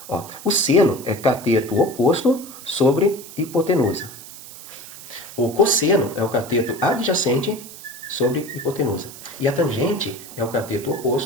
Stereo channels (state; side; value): noise; right; hiss, 15 dB below the sound